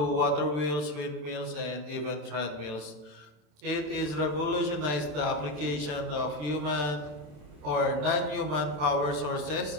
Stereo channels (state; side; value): late; left; 27 ms